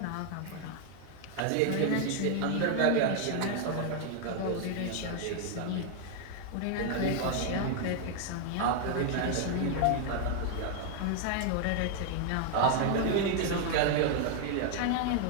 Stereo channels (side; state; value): both; different; correlation 0.00